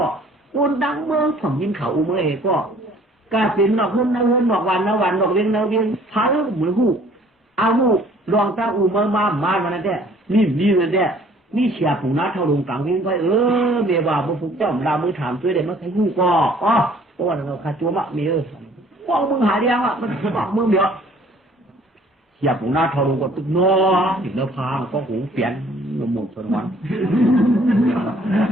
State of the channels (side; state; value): both; normal; correlation 0.56